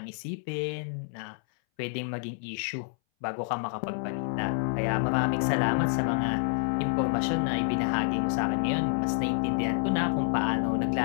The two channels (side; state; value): right; silent; 59 dB below the other